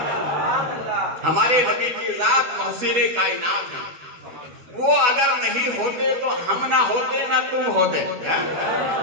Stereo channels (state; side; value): late; left; 12 ms